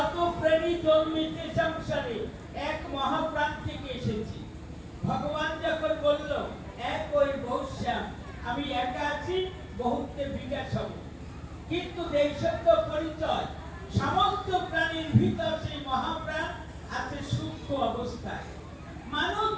প্রেমী জন্মিতে সংসারে এক মহাপ্রাণ থেকে এসেছি। ভগবান যখন বলল এক ওই বহুশ্যাম, আমি একা আছি, বহুত্বে বিকাশ হব। কিন্তু এই সত্য পরিচয়, সমস্ত প্রাণীর ভিতর সেই মহাপ্রাণ আছে সূক্ষ্ম অবস্থায়। মানুষ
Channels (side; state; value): both; identical; correlation 1.00